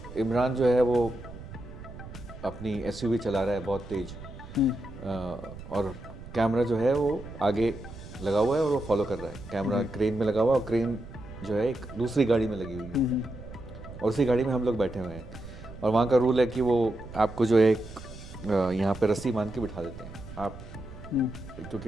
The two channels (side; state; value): right; noise; rumble, 14 dB below the sound